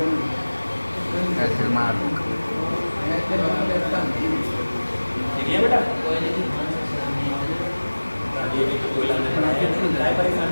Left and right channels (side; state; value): both; inverted; correlation -1.00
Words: ठीक है बेटा? ये भी तो कोयला में पढ़ाएंगे, क्या परेशान